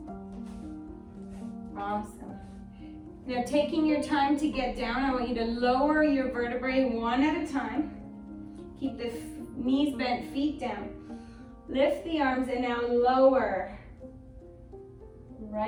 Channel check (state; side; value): identical; both; correlation 1.00